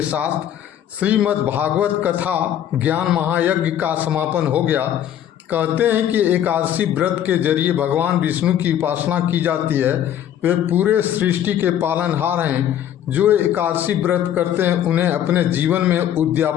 साथ श्रीमद् भागवत कथा ज्ञान महायज्ञ का समापन हो गया। कहते हैं कि एकादशी व्रत के जरिए भगवान विष्णु की उपासना की जाती है। वे पूरे सृष्टि के पालनहार हैं। जो एकादशी व्रत करते हैं उन्हें अपने जीवन में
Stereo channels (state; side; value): quieter; right; 10.6 dB